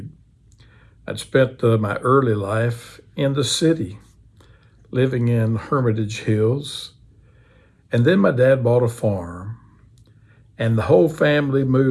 I'd spent my early life in the city, living in Hermitage Hills. And then my dad bought a farm, and the whole family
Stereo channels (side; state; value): both; identical; correlation 1.00